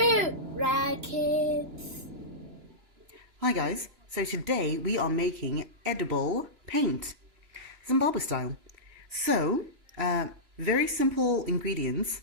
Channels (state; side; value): late; left; 2.9 ms